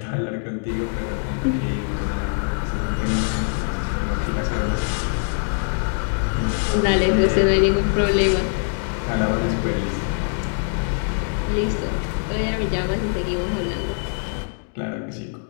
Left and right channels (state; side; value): silent; right; 62 dB below the other